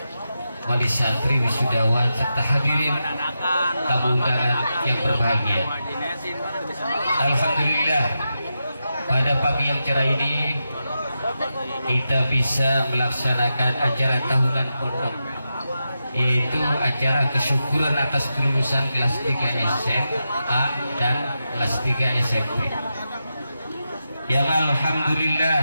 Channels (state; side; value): inverted; both; correlation -0.88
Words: wali santri, wisudawan, serta hadirin tamu undangan yang berbahagia. Alhamdulillah, pada pagi yang cerah ini kita bisa melaksanakan acara tahunan pondok, yaitu acara kesyukuran atas kelulusan kelas 3 SMA dan kelas 3 SMP. Yang alhamdulillah